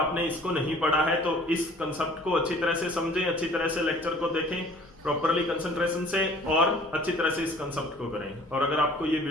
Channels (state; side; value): noise; left; rumble, 26 dB below the sound